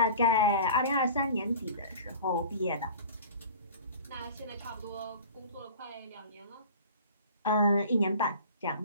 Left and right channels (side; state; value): both; inverted; correlation -0.41